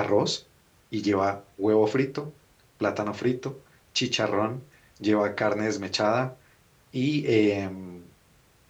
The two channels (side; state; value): both; identical; correlation 1.00